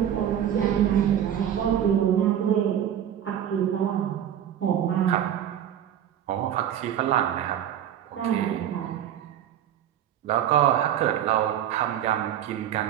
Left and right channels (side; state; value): left; quieter; 10.2 dB